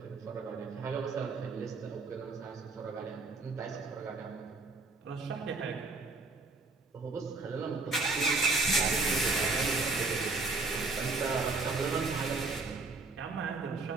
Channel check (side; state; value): left; quieter; 3.7 dB